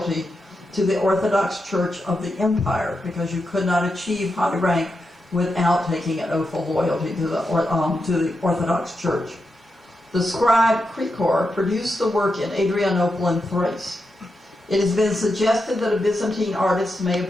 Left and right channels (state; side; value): normal; both; correlation 0.87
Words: to the Orthodox Church of the Empire, because you could not achieve high rank without taking an oath of loyalty to the Orthodox Church. The scribe Khachkar produced the work in Adrianople and Thrace. It has been suggested that a Byzantine artist may have